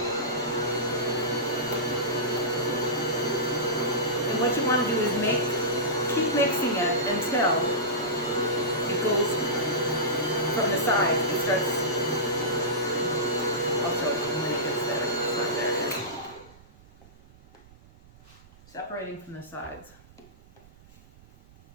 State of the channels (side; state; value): right; noise; rumble, 25 dB below the sound